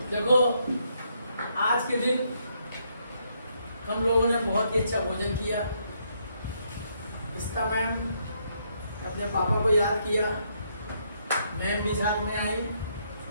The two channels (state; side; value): inverted; both; correlation -0.74